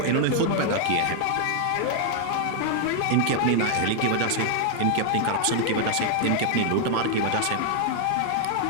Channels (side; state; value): both; different; correlation 0.00